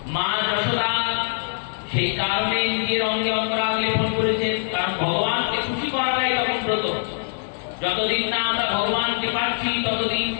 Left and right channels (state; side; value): silent; right; digital silence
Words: মা যশোদা সেই কারণে নিজের অঙ্গে অঙ্গরাগ লেপন করেছেন, কারণ ভগবানকে খুশি করাটাই তখন ব্রত। যতদিন না আমরা ভগবানকে পাচ্ছি ততদিন